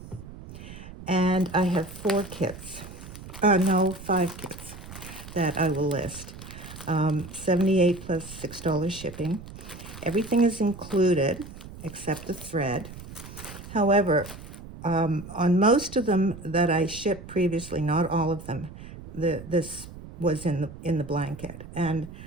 and I have 5 kits that I will list. $78 plus $6 shipping. Everything is included except the thread. However, on most of them that I shipped previously, not all of them, this was in the blanket, and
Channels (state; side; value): noise; right; rumble, 14 dB below the sound